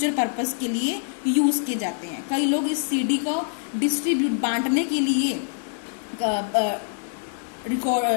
पर्पस के लिए यूज़ किए जाते हैं। कई लोग इस CD को डिस्ट्रीब्यूट बांटने के लिए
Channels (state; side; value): silent; right; digital silence